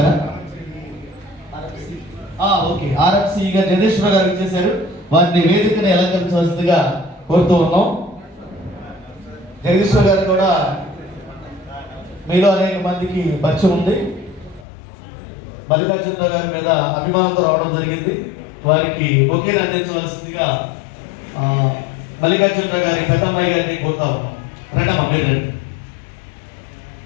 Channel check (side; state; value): right; drops out; at 14.7 s